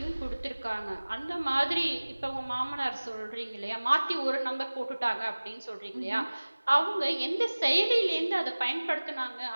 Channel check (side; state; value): both; inverted; correlation -1.00